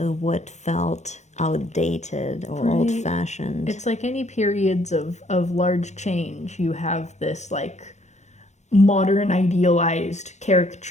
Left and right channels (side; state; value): right; late; 0.33 ms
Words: what felt outdated or old-fashioned. It's like any periods of large change, you have this like modern idealized